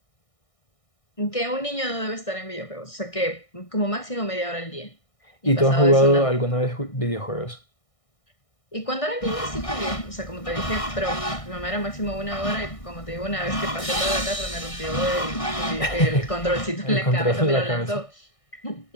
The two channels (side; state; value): right; late; 1.6 ms